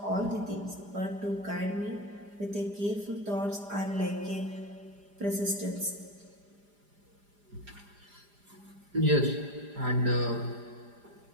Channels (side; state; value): left; late; 4.9 ms